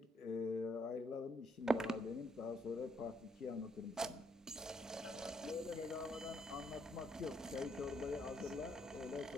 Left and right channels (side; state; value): both; normal; correlation 0.73